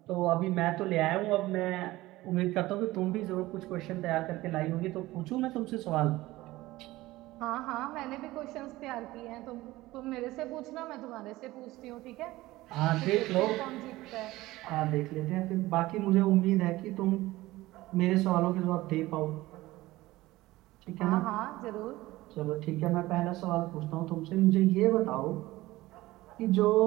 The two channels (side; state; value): left; quieter; 18.1 dB